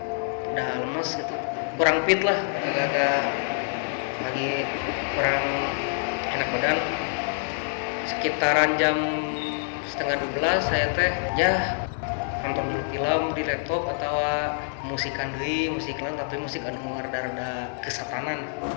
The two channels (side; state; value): right; silent; digital silence